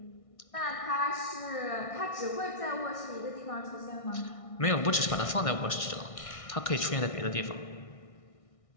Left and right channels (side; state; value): right; late; 1.6 ms